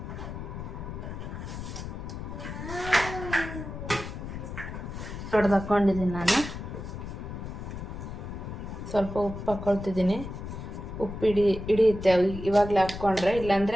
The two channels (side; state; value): left; noise; rumble, 8 dB below the sound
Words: ಹೊಡೆದು ಹಾಕ್ಕೊಂಡಿದ್ದೀನಿ ನಾನು. ಸ್ವಲ್ಪ ಉಪ್ಪು ಹಾಕ್ಕೊಳ್ತಿದ್ದೀನಿ. ಉಪ್ಪು ಹಿಡಿಯುತ್ತೆ ಇವಾಗಲೇ ಹಾಕ್ಕೊಂಡ್ರೆ,